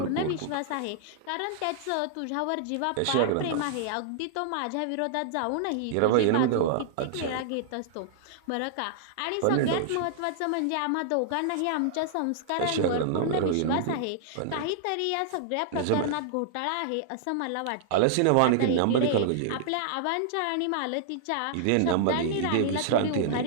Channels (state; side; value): different; both; correlation -0.01